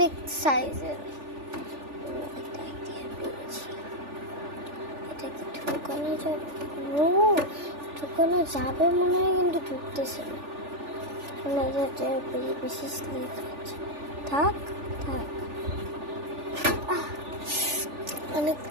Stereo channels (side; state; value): left; late; 3.4 ms